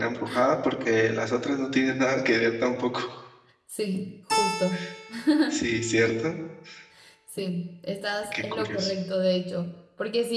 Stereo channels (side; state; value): both; identical; correlation 1.00